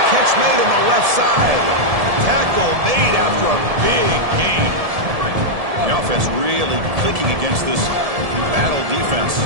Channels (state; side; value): late; left; 1.7 ms